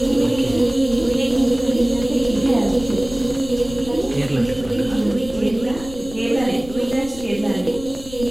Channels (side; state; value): left; noise; rumble, 15 dB below the sound